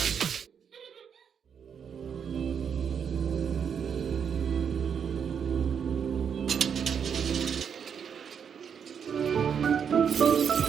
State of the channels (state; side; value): quieter; left; 7.4 dB